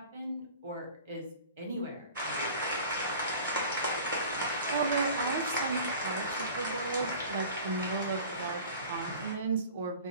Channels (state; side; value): inverted; both; correlation -0.42